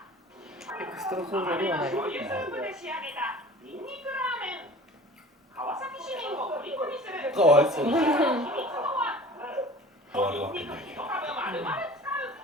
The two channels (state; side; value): normal; both; correlation 0.43